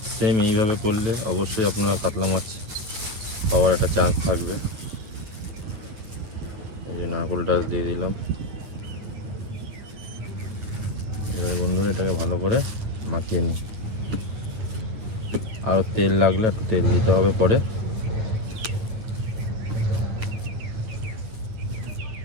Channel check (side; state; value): left; late; 9.5 ms